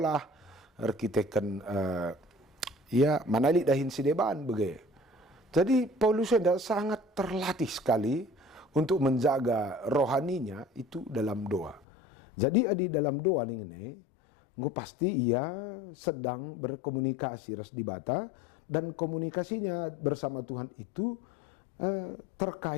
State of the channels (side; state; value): right; drops out; at 11.8 s